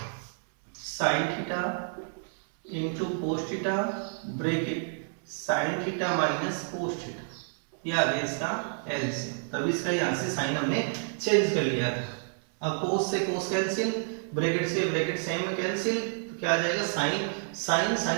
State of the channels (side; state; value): left; silent; 58 dB below the other